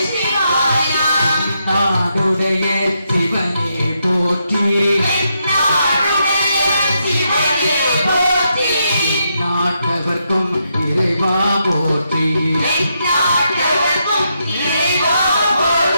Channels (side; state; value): both; inverted; correlation -0.80